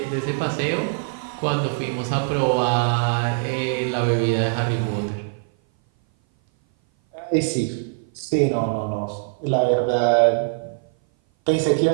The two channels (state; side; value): silent; left; 58 dB below the other